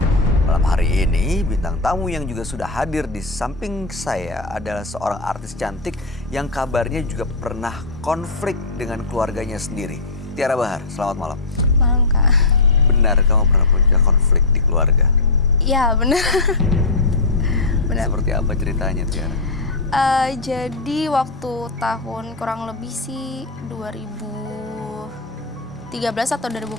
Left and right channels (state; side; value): quieter; right; 3.4 dB